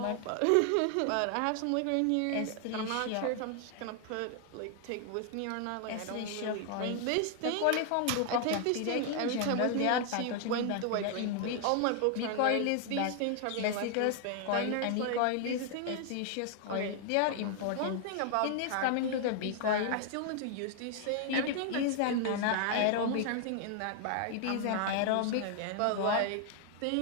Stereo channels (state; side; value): different; both; correlation 0.00